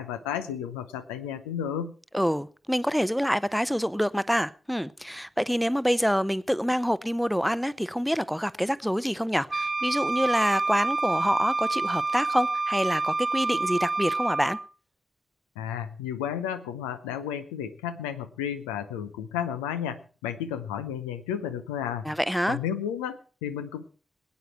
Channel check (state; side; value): normal; both; correlation 0.88